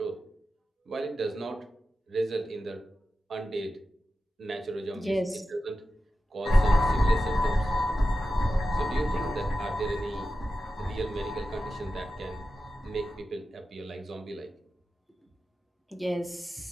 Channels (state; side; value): normal; both; correlation 0.93